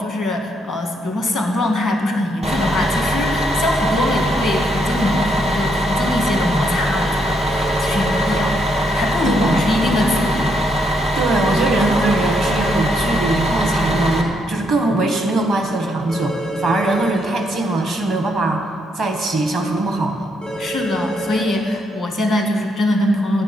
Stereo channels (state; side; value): normal; both; correlation 0.75